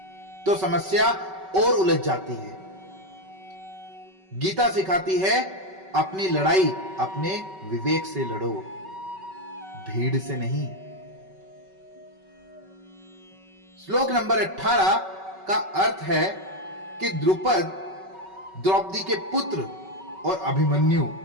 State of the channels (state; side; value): late; left; 5.3 ms